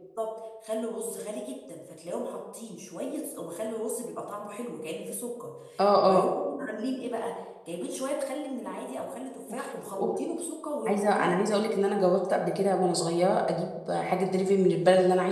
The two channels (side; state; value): both; identical; correlation 1.00